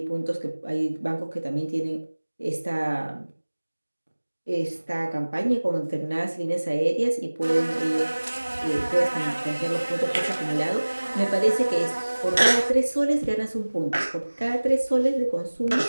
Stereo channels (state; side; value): inverted; both; correlation -1.00